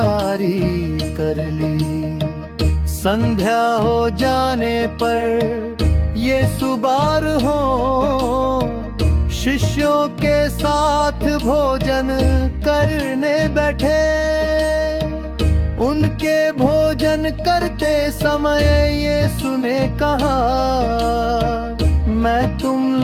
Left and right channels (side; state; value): both; identical; correlation 1.00